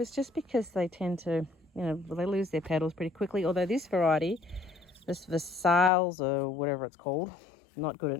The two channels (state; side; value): drops out; right; at 5.9 s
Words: just because they tend to you know, they lose their petals pretty quickly. Although this variety, this Versailles or whatever it's called, not good